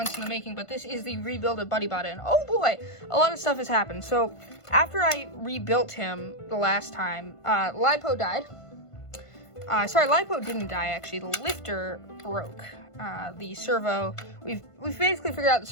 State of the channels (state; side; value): late; right; 1.5 ms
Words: in the making, but this is the Rebuild Of Buddybot, and oh boy, a lot of stuff has happened. So after I rebuilt him the last time, Lipo died. Sorry, Lipo didn't die actually. The lifter broke. The servo, we've basically figured out the